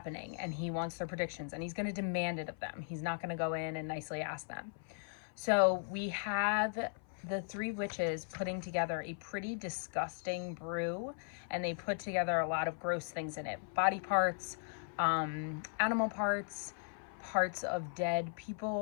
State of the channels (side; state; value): right; silent; 53 dB below the other